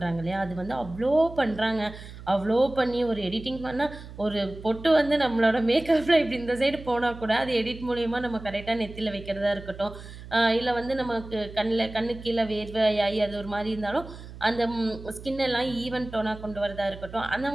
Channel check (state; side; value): noise; right; hum, 14 dB below the sound